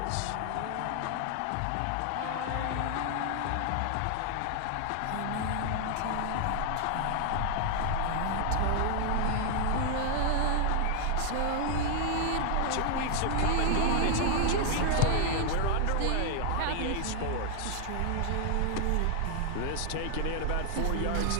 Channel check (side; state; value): both; different; correlation 0.00